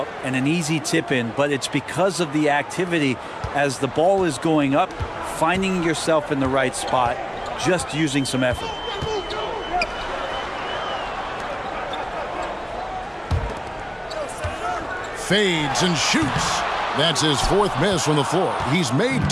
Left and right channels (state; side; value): identical; both; correlation 1.00